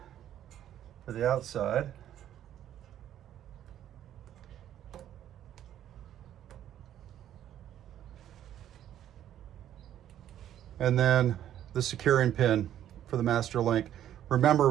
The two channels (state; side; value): quieter; left; 11.2 dB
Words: for the outside. And then the securing pin for the master link. Remember,